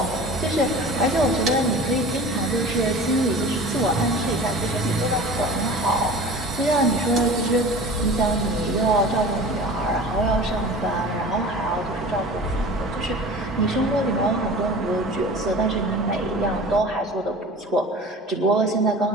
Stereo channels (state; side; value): normal; both; correlation 0.39